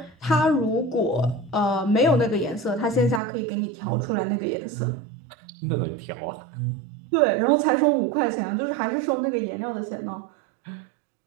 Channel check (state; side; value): drops out; left; at 3.2 s